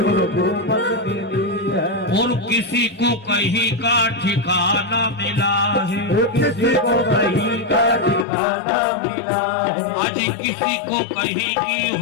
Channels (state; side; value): drops out; right; at 8.2 s